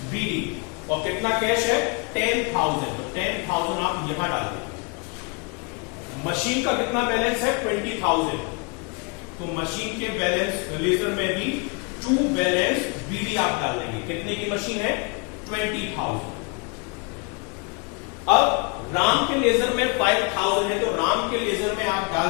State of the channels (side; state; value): right; quieter; 32.6 dB